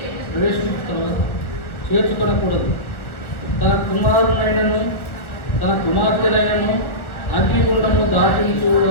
ప్రవేశించిన చేర్చుకొనకూడదు. తన కుమారునైనను తన కుమార్తెనైనను అగ్నిగుండము దాటించు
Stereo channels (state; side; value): late; right; 1.2 ms